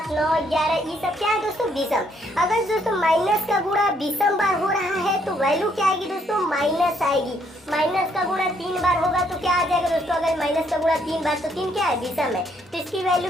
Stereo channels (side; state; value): both; normal; correlation 0.70